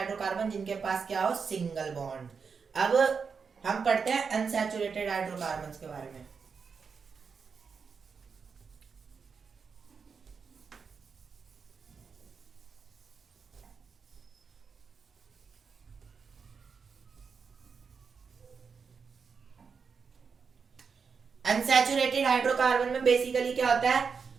जिनके पास क्या हो, सिंगल बॉन्ड। अब हम पढ़ते हैं अनसैचुरेटेड हाइड्रोकार्बन के बारे में। अनसैचुरेटेड हाइड्रोकार्बन में बेसिकली क्या होता है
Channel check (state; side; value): quieter; left; 5.7 dB